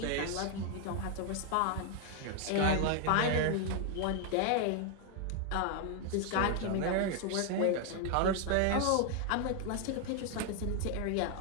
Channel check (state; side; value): different; both; correlation 0.00